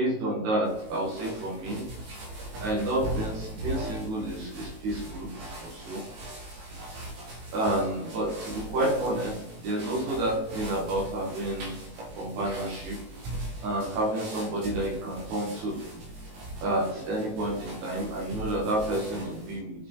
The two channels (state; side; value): late; left; 19 ms